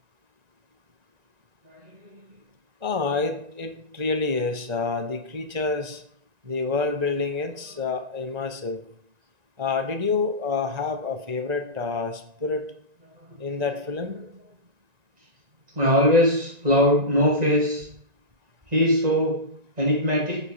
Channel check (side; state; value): left; late; 1.9 ms